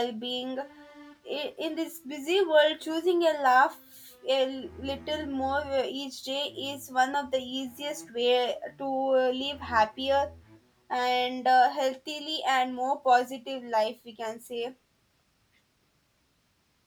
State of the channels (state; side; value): identical; both; correlation 1.00